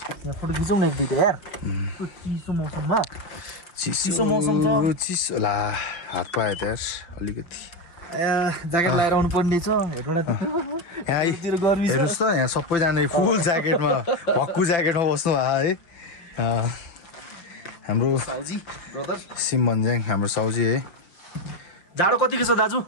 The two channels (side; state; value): right; late; 5.8 ms